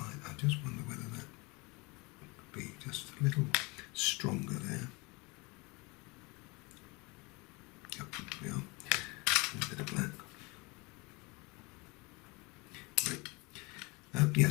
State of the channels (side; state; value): right; quieter; 26.7 dB